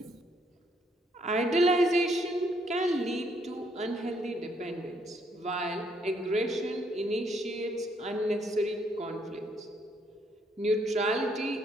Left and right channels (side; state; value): both; normal; correlation 0.70